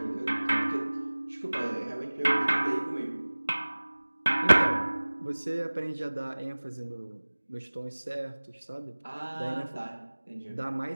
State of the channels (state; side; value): inverted; both; correlation -1.00